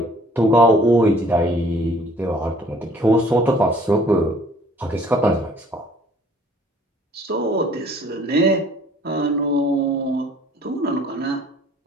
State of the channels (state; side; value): normal; both; correlation 0.56